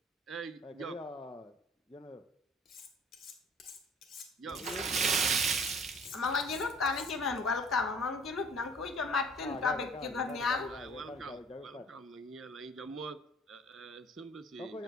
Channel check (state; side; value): normal; both; correlation 0.50